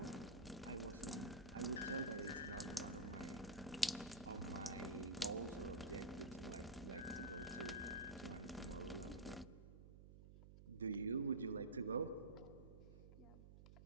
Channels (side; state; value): right; noise; hum, 14 dB below the sound